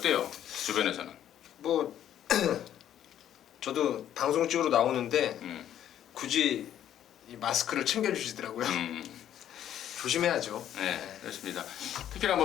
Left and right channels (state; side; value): quieter; right; 10.8 dB